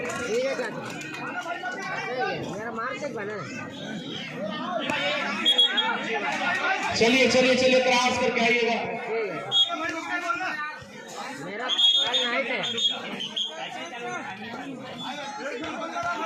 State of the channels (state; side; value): identical; both; correlation 1.00